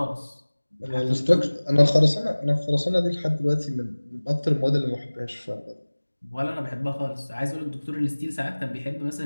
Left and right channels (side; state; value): both; inverted; correlation -1.00